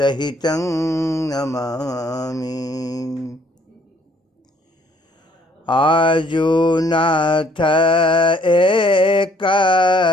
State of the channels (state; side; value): normal; both; correlation 0.63